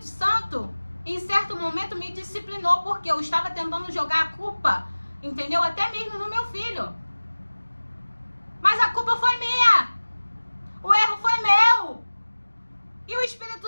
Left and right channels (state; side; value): inverted; both; correlation -1.00